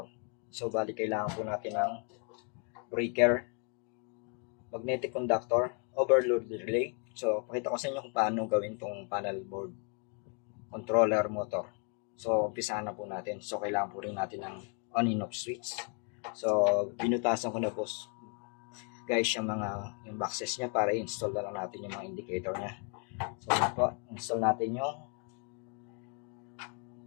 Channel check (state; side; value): quieter; right; 39.6 dB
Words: So bali kailangan po natin ng breaker, magnetic conductor, overload relay. So pakita ko sa inyo kung paano gawin itong panel board controller motor. So umpisahan na po natin. So kailangan po rin natin ng on and off switch. So binutasan ko na po guys yung boxes niya para i-install na lang natin yung mga indicator niya. So yun po, install natin yung